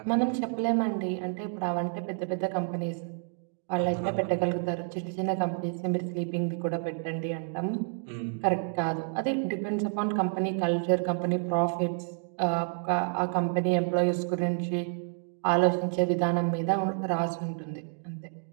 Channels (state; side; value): silent; left; 58 dB below the other